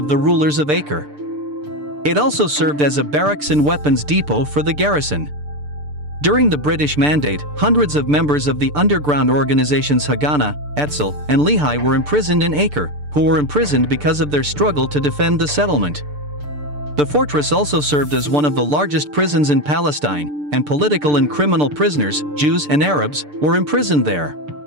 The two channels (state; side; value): late; left; 6.8 ms